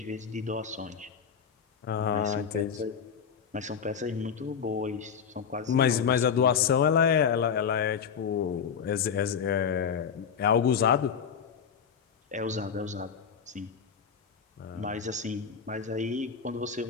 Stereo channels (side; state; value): right; quieter; 7.0 dB